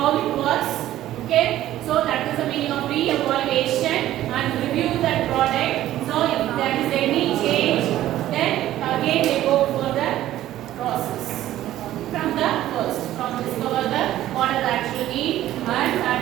it works. Okay, so that is the meaning of re-evaluation and review that product. So if there is any change, then again they go for the process from the first, from discover the what are the actual need and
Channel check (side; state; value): left; quieter; 13.7 dB